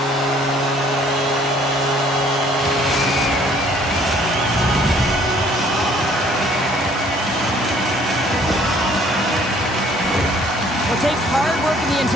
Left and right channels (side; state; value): both; normal; correlation 0.59